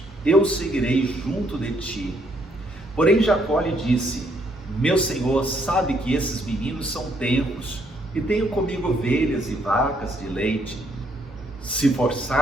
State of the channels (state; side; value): normal; both; correlation 0.70